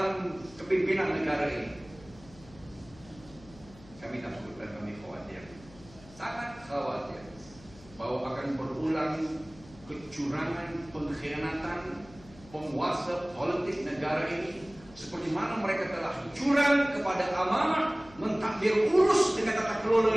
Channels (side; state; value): left; noise; hum, 22 dB below the sound